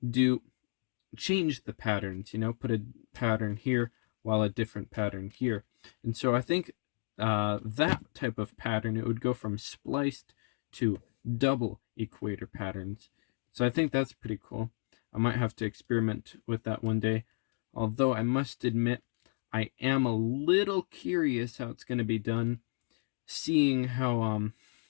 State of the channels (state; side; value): silent; right; digital silence